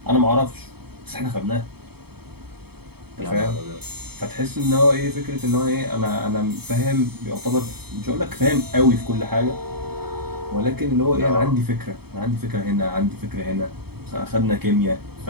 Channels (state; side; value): late; left; 0.96 ms